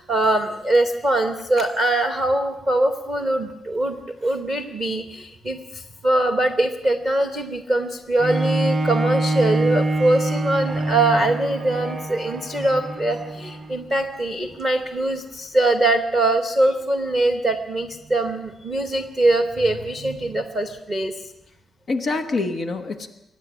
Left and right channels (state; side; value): normal; both; correlation 0.81